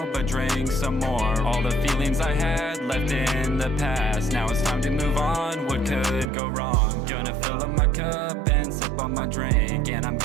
but drink some more. All the feelings I had left in the past. Now it's time to move on. What could go wrong? Gonna fill up my cup and sip on my drink, and I'm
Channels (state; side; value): drops out; left; at 6.2 s